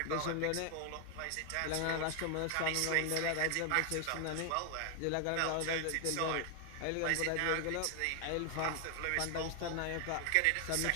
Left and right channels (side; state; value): both; different; correlation 0.00